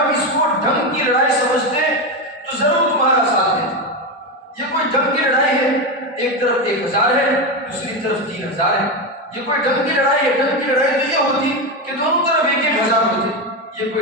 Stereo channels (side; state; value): both; normal; correlation 0.14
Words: اس کو ڈھنگ کی لڑائی سمجھتے تو ضرور تمہارا ساتھ دیتے۔ یہ کوئی ڈھنگ کی لڑائی ہے، ایک طرف 1000 ہے، دوسری طرف 3000 ہے، یہ کوئی ڈھنگ کی لڑائی ہے۔ ڈھنگ کی لڑائی تو یہ ہوتی کہ دونوں طرف 1000 ہوتے، یہ